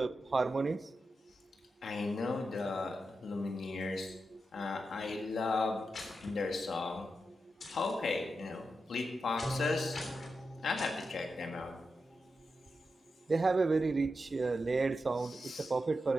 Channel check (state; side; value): normal; both; correlation 0.88